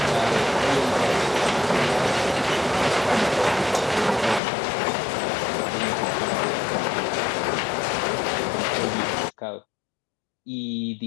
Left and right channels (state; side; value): drops out; right; at 4.4 s